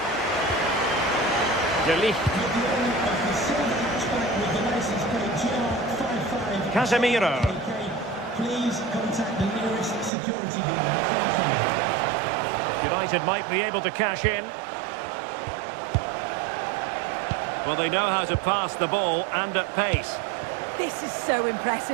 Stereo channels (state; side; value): drops out; left; at 10.1 s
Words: De Ligt. Casemiro. Please contact the nearest security guard. Thank you. United might be able to cash in. Well, they know how to pass the ball and at pace. This is so